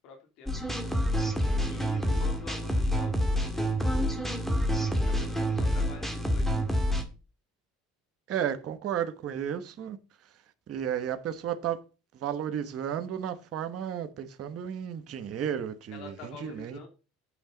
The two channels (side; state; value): both; normal; correlation 0.66